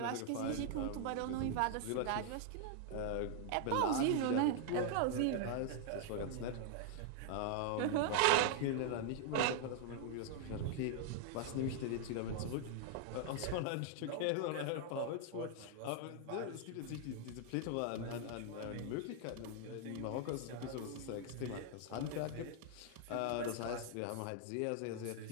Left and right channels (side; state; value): both; different; correlation -0.01